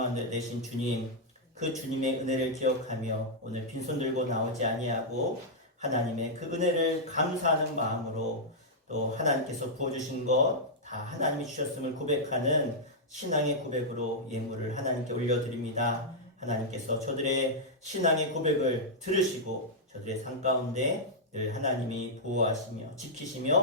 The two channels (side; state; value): both; normal; correlation -0.07